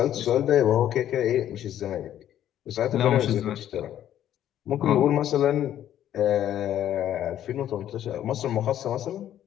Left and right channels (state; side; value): quieter; right; 11.3 dB